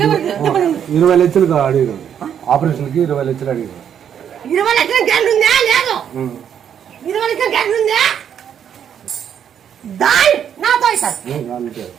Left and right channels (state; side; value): quieter; left; 8.8 dB